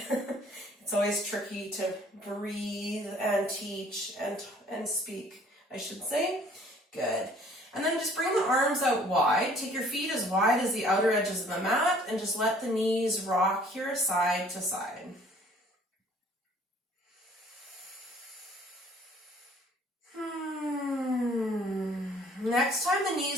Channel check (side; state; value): both; normal; correlation 0.56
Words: It's always tricky to breathe and teach and speak, I should say. Good. And then just bring the arms out wide. Take your feet as wide as the outer edges of the mat and just let the knees rock here side to side. Next time the